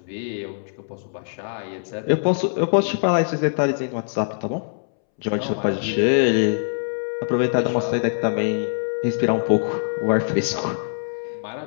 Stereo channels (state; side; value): silent; right; 63 dB below the other